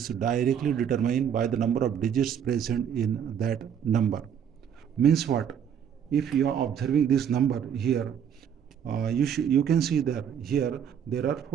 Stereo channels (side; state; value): left; quieter; 8.4 dB